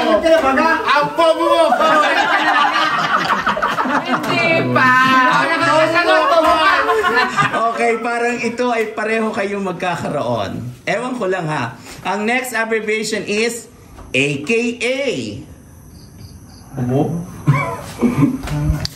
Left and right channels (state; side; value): identical; both; correlation 1.00